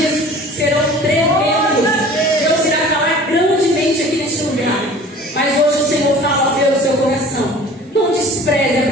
serão tremendos. Deus irá falar grandemente aqui neste lugar. Mas hoje o Senhor fala pelo seu coração. Não despreze a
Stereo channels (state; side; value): normal; both; correlation 0.45